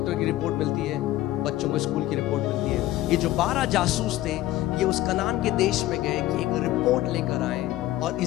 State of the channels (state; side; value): quieter; right; 15.4 dB